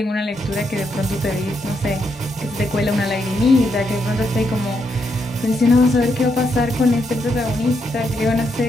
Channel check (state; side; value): normal; both; correlation 0.79